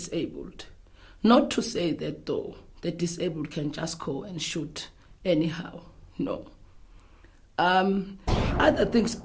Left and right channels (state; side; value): identical; both; correlation 1.00